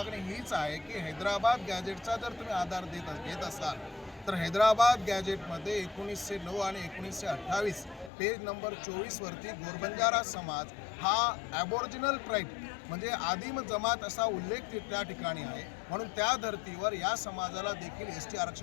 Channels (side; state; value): right; drops out; at 8.1 s